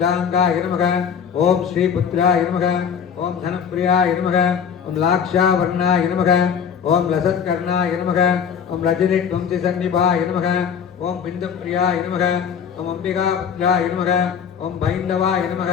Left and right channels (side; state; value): right; quieter; 7.3 dB